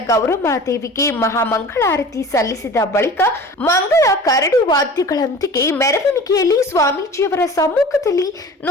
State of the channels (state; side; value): normal; both; correlation 0.40